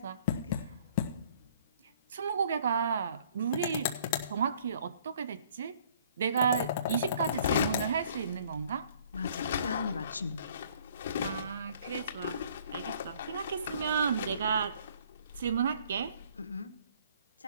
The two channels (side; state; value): both; inverted; correlation -0.57